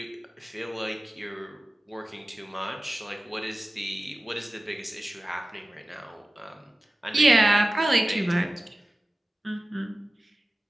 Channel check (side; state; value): both; normal; correlation 0.97